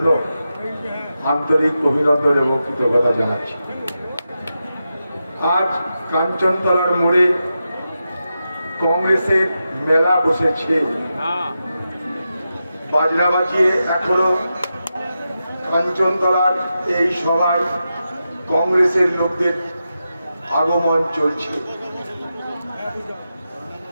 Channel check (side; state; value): both; inverted; correlation -0.89